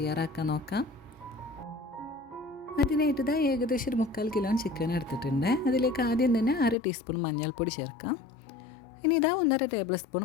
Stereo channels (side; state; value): right; drops out; at 6.8 s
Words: നോക്കാം. അതിനായിട്ട് ഇതാ ഏകദേശം ഒരു 3/4 കിലോ ചിക്കൻ എടുത്തിട്ടുണ്ട്. അതിലേക്ക് ആദ്യം തന്നെ 1/2 ടീസ്പൂൺ മഞ്ഞൾപ്പൊടി ചേർക്കാം. ഇനി ഇതാ 1.5 ടേബിൾ സ്പൂൺ